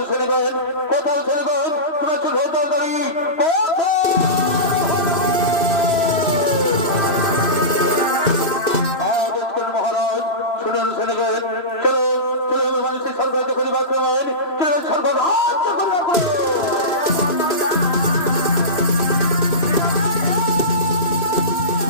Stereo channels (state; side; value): late; right; 2.5 ms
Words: ছেড়ে গেন, কোথাও ছেড়ে গেন, তোমার চোখ হতারি মহারাজ শুনেন, শুনে গেন। চলো চলো মানুষের স্বর্গ রাজ্য করিবে আক্রমণ। চলো স্বর্গ রাজ্য করিবে আক্রমণ।